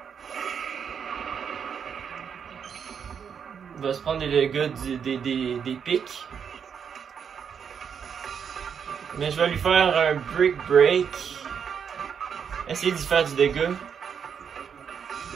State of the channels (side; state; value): left; quieter; 7.2 dB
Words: Il va se prendre des dégâts des pics. Mais je vais lui faire un Brick Break. Essayer d'y faire du dégât.